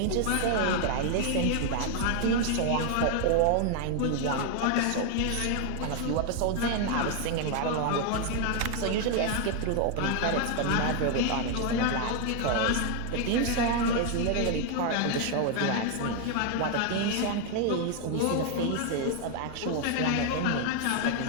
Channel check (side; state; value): both; different; correlation 0.01